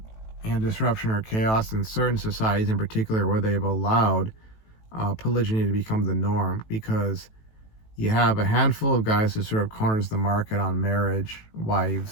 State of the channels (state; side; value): late; right; 18 ms